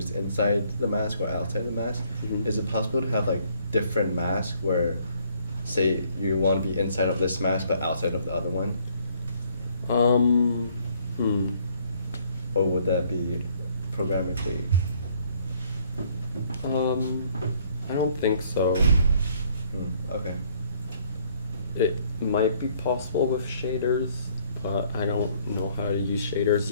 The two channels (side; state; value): both; inverted; correlation -0.64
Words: inside the mask or outside the mask. Mhm. Is it possible to have like different masks where, say, you want to be inside of this mask but outside of the other one? Or would that be programmatically? I don't think so. Okay. It might be possible with shaders, but I don't know how to use shaders